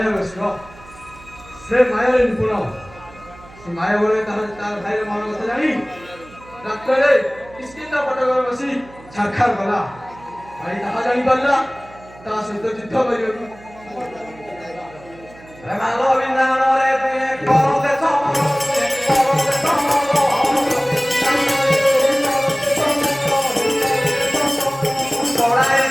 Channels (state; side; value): noise; right; hum, 22 dB below the sound